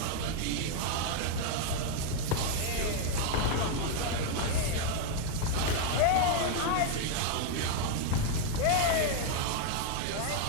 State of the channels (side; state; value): both; different; correlation 0.00